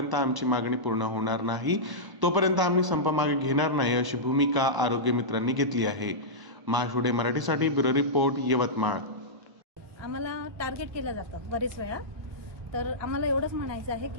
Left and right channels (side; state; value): left; late; 1.0 ms